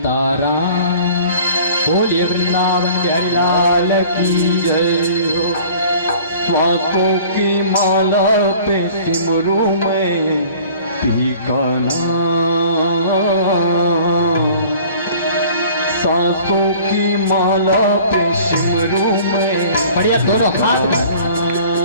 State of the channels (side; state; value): both; inverted; correlation -0.48